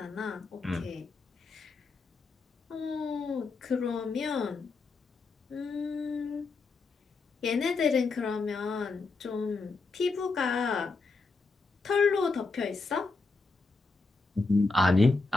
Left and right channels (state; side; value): quieter; right; 3.9 dB